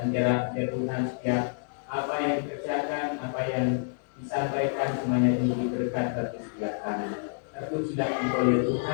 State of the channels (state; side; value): silent; right; digital silence